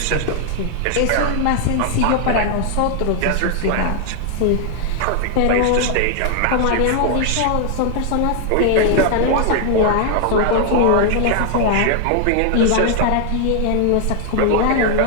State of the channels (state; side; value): different; both; correlation 0.00